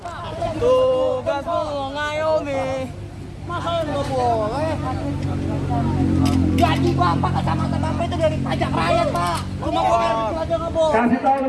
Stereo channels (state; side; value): identical; both; correlation 1.00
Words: Tugasmu ngayomi. Masa nggak boleh? Gaji Bapak kecamatan Bapak itu dari pajak rakyat, Pak. Cuma buat air kecil aja nggak boleh. Kasih tahu